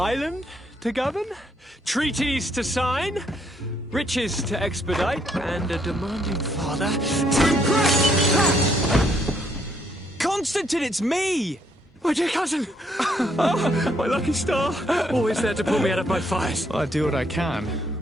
to govern, treaties to sign, riches to expedite, and a demanding father to impress. Constantine, it's me! My dear cousin! Oh, my lucky star. Always there to pull me out of my fires. Well, I do what I can.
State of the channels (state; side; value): normal; both; correlation 0.71